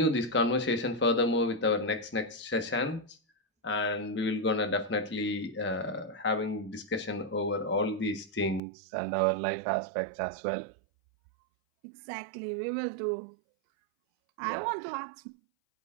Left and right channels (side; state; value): left; drops out; at 8.6 s